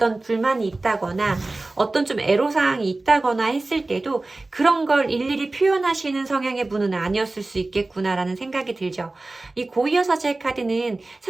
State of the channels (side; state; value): left; quieter; 3.1 dB